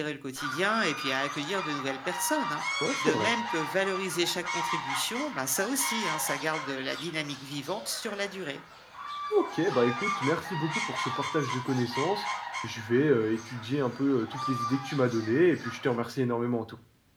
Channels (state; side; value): identical; both; correlation 1.00